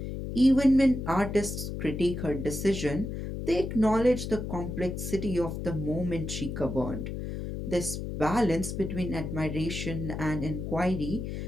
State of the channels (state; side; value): noise; left; hum, 5 dB below the sound